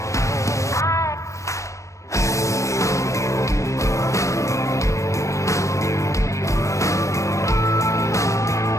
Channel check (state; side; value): late; right; 0.15 ms